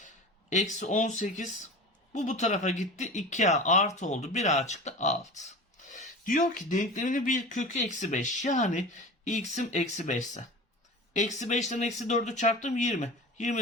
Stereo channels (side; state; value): both; normal; correlation 0.34